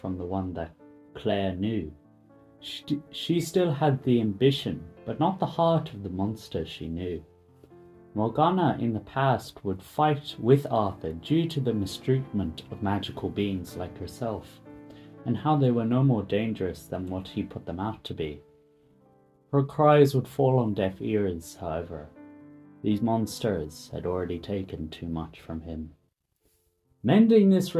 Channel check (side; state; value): both; identical; correlation 1.00